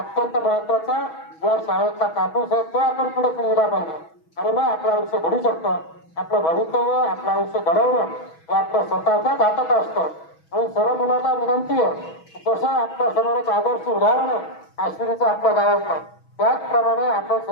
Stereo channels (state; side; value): late; right; 6.2 ms